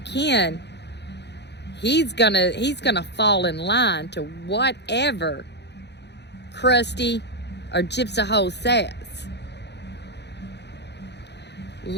Ken, he's going to fall in line to whatever Krusty or Gypsv says.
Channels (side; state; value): right; late; 0.50 ms